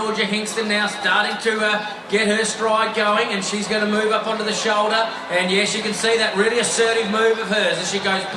Hingston now starting to get her stride going, and she's going to move up onto the shoulder. And yes, you can see that really assertive move of hers as she goes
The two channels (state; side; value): identical; both; correlation 1.00